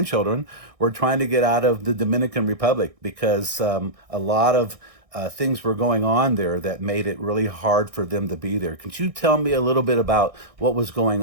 were trying to get out of the Dominican Republic because a lot of things were going on there that made it really hard for them to be there. Could you tell me a little bit about what was going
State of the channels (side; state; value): left; late; 1.6 ms